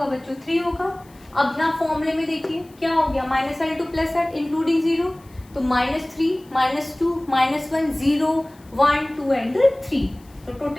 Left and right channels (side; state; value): left; noise; hiss, 29 dB below the sound